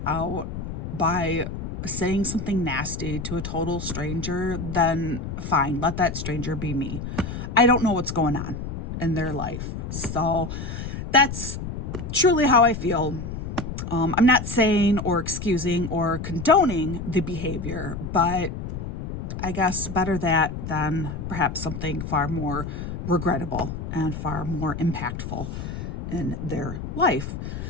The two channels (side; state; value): left; noise; rumble, 6 dB below the sound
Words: out by saying something nasty to a total stranger, then fine, let that stranger be me. I don't know what's going on in their life. So that's truly how I feel. I'm not saying or excusing or condoning the behavior, but I guess better that than perhaps something far more regrettable and far more impactful in their life.